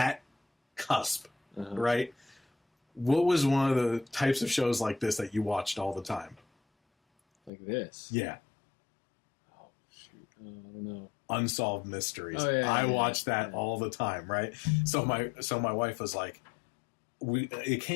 cusp, right? What was one of the types of shows like this that you watched all the time? Like this? Yeah. Oh, shoot. I don't know. Unsolved Mysteries. Oh, yeah, I watched that all the time, right? So my wife was like, it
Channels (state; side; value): drops out; right; at 7.5 s